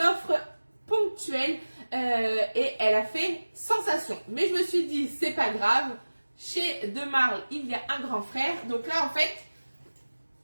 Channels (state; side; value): inverted; both; correlation -1.00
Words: offre ponctuelle et elle a fait sensation. Mais je me suis dit, c'est pas grave, chez De Marle, il y a un grand frère. Donc là, en fait,